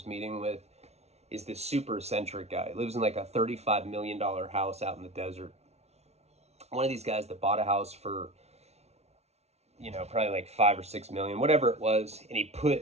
meeting with is this super eccentric guy. He lives in like a $35 million house out in the desert. One of these guys that bought a house for, probably like 5 or 6 million, whatever it was, and he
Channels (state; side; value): late; left; 0.31 ms